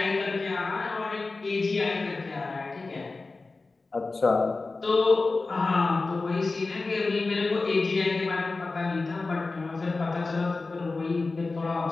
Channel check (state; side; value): quieter; right; 3.7 dB